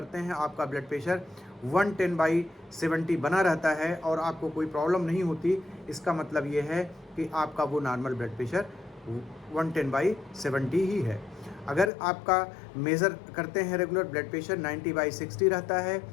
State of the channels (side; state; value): right; drops out; at 11.9 s